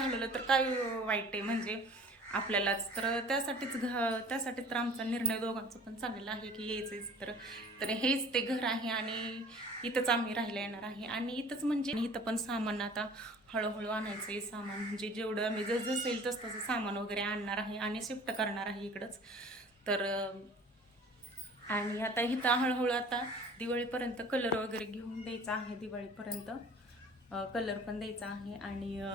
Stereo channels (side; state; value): both; normal; correlation 0.47